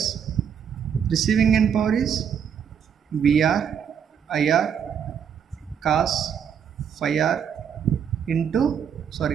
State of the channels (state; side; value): quieter; left; 7.9 dB